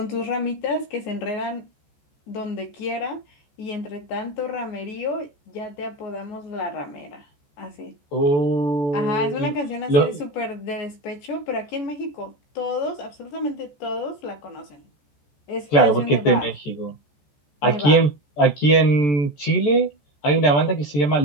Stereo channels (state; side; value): late; right; 14 ms